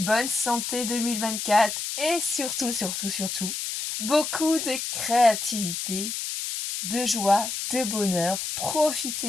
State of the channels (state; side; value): noise; left; hiss, 4 dB below the sound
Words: santé 2024 et surtout, beaucoup de créativité, de joie, de bonheur.